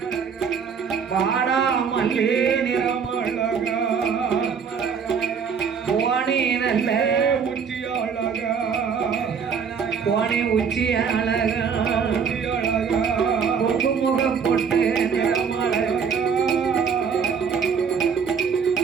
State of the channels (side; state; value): left; quieter; 6.5 dB